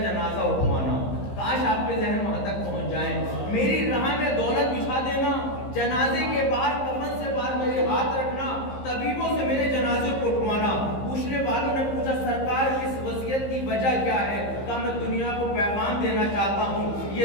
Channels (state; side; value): late; right; 15 ms